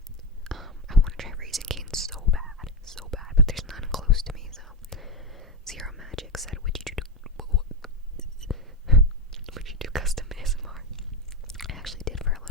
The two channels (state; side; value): normal; both; correlation 0.16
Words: I want to try Raising Cane's so bad, but there's none close to me, so. Zero Magic said, would you do custom ASMR? I actually did for a